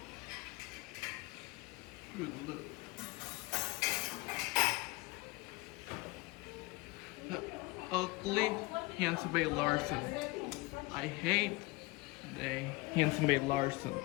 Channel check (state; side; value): quieter; right; 23.1 dB